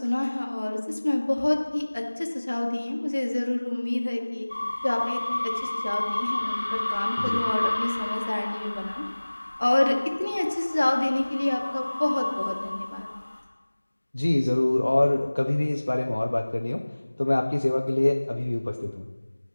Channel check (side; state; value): both; inverted; correlation -1.00